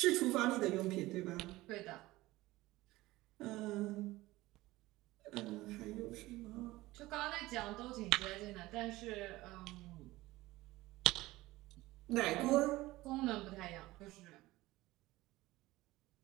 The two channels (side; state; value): left; quieter; 18.6 dB